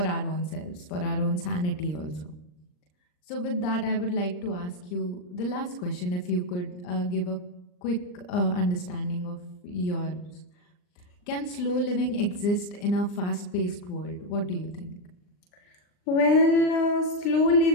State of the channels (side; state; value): right; late; 39 ms